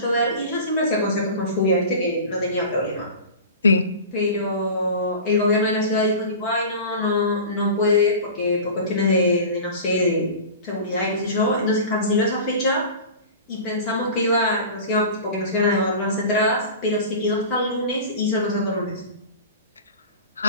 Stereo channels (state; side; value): inverted; both; correlation -0.34